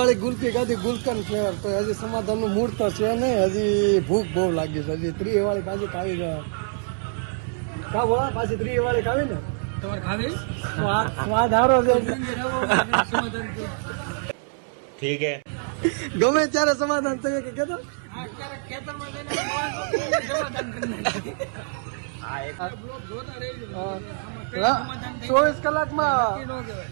ગુલ્ફી ખાધી, ગુલકન ફ્લેવર. તો હજી સમાધાન નું મૂળ તો છે નહીં, હજી ભૂખ બહુ લાગી છે. હજી 3 વાળી પાછી ખાવી છે. પાછી 3 વાળી ખાવી ને તમારે ખાવી સ્વાદ હારો છે. ઠીક હે, ગમે ત્યારે સમાધાન થયું કે કીધું 24 કલાકમાં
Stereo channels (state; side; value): silent; left; 62 dB below the other